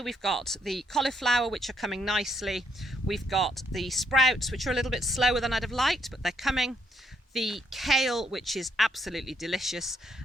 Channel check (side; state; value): both; normal; correlation 0.73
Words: we've got the cauliflower, which are coming nicely. We've got the sprouts, which are a little bit slower than I'd have liked, but they're coming. The kale, which is absolutely delicious,